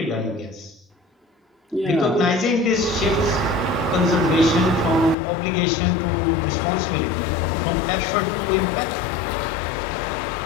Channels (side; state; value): right; drops out; at 5.2 s